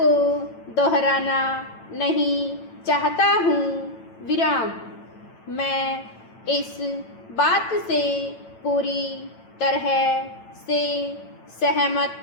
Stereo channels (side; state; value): right; late; 9.0 ms